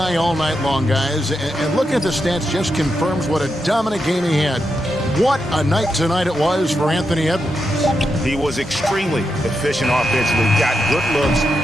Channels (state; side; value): normal; both; correlation 0.85